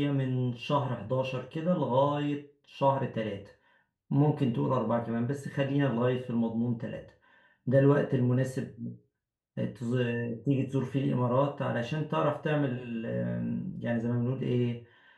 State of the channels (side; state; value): both; identical; correlation 1.00